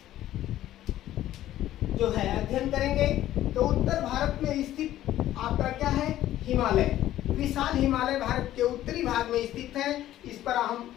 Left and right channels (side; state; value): right; quieter; 13.5 dB